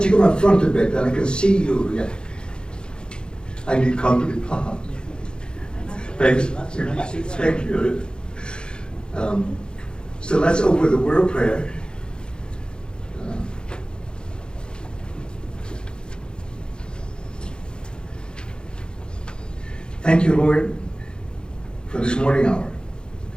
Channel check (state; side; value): late; right; 0.049 ms